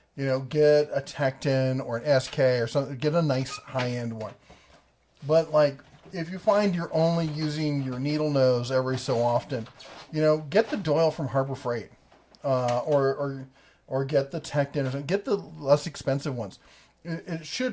get a Tecton or an SK or something. Get a nice high-end one. But if you find you're only using your needle nose every so often, get the Doyle from Harbor Freight, or get the Tecton or something. Get the less expensive ones. It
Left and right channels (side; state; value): both; identical; correlation 1.00